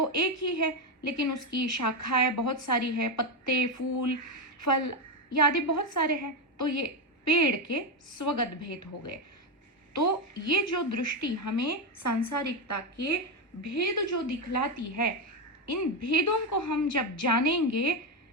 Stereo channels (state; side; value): normal; both; correlation 0.09